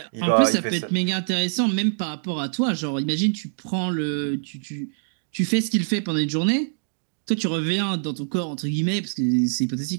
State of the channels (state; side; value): silent; left; digital silence